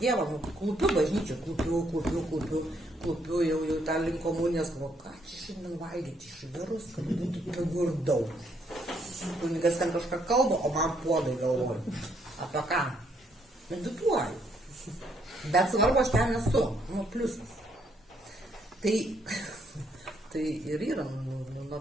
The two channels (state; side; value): normal; both; correlation 0.72